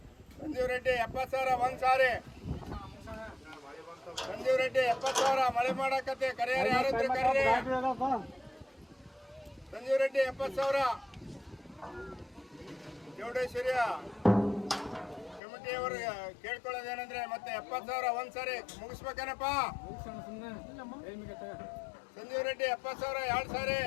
ಸಂಜೀವ್ ರೆಡ್ಡಿ 70,000 ಒಂದು ಸಾರಿ. ಸಂಜೀವ್ ರೆಡ್ಡಿ 70,000. ಮಳೆ ಮಾಡಕತ್ತೆ, ಕರೆಯರು ಯಾರಿದ್ರೆ ಕರೀರಿ. ಸಂಜೀವ್ ರೆಡ್ಡಿ 70,000. ಚೌಡೇಶ್ವರಿಯ ಕಮಿಟಿಯವರು ಕೇಳ್ಕೊಳ್ಳೋದೇನಂದ್ರೆ ಮತ್ತೆ 70,000 ಒಂದು ಸಾರಿ ಮುಗಿಸ್ಬೇಕೇನಪ್ಪ. ಸಂಜೀವ್ ರೆಡ್ಡಿ 70,000 2 ಸಾರಿ.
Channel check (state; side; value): drops out; right; at 15.4 s